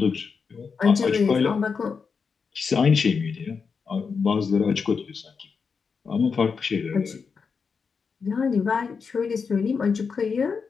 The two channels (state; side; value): quieter; right; 5.5 dB